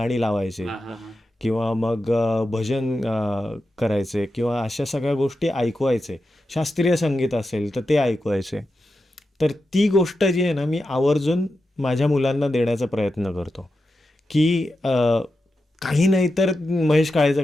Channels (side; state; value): both; normal; correlation 0.89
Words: लावायचे किंवा मग भजन करायचे किंवा अशा सगळ्या गोष्टी ऐकवायचे. शास्त्रीय संगीत असेल तर ते ऐकवायचे. तर ती गोष्ट जी आहे ना, मी आवर्जून माझ्या मुलांना देण्याचा प्रयत्न करतो की काही नाही तर महेश काळेचं